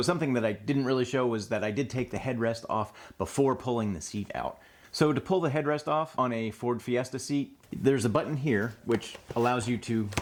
something that I didn't really show was that I did take the headrest off before pulling the seat out. So to pull the headrest off on a Ford Fiesta seat, there's a button here which allows you to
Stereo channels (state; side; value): identical; both; correlation 1.00